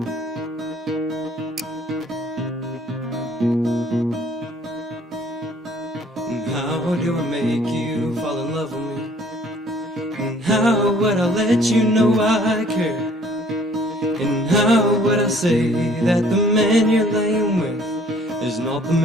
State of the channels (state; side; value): normal; both; correlation 0.56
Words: How do I make you fall in love with me? And how would I let you know I care? And how would I say that the man you're laying with is not the